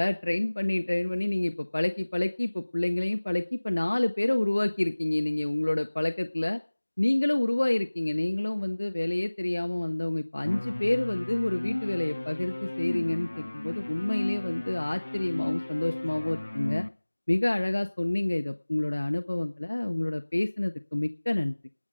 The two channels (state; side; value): inverted; both; correlation -1.00